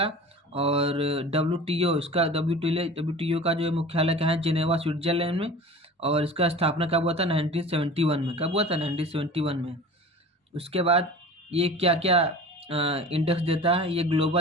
और WTO का जो मुख्यालय कहाँ है, जेनेवा स्विट्जरलैंड में। और इसका स्थापना कब हुआ था, 1971 में। कब हुआ था, 1971 में। उसके बाद ये क्या क्या इंडेक्स देता है, ये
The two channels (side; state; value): both; normal; correlation 0.38